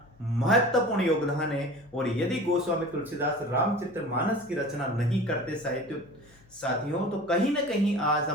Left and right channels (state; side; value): noise; left; hum, 28 dB below the sound